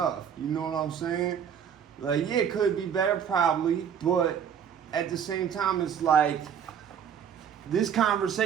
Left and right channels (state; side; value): quieter; left; 8.1 dB